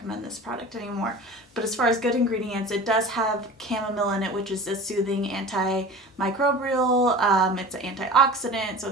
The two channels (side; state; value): both; normal; correlation 0.37